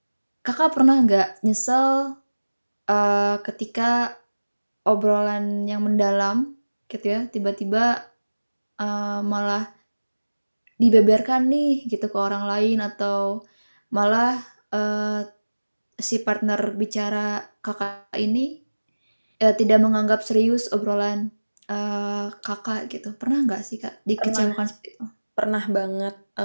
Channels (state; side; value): inverted; both; correlation -1.00